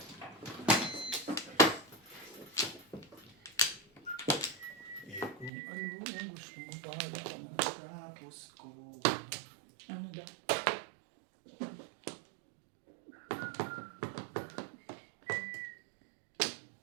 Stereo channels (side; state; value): left; drops out; at 5.5 s